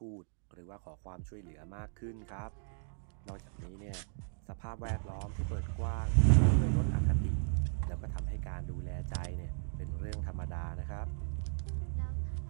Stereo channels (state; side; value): silent; left; digital silence